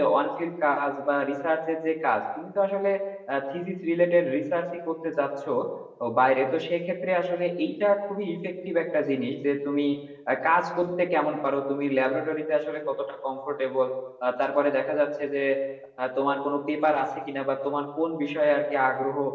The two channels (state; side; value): identical; both; correlation 1.00